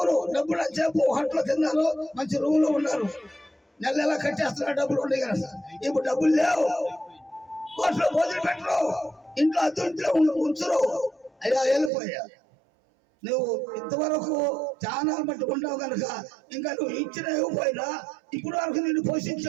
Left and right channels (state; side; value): drops out; left; at 11.9 s